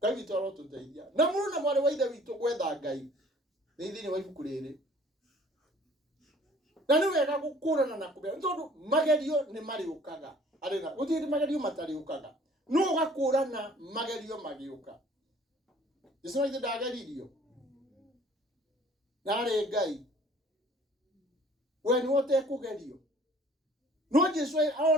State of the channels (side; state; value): both; normal; correlation 0.53